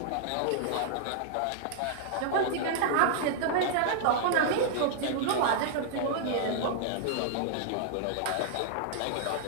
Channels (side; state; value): both; different; correlation -0.01